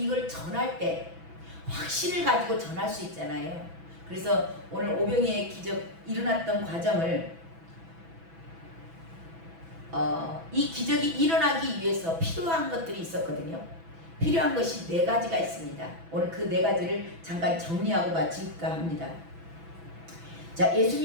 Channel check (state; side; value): late; left; 6.1 ms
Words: 전할 때 확신을 가지고 전할 수 있잖아요. 그래서 오늘 오병이의 기적 일어났던 과정을 이 기적이 일어나기 위해서 필요한 것들이 있었거든요. 필요한 것이 4가지가 있습니다. 오늘 그 4가지를 잠깐 정리하고 마칠까 합니다. 자,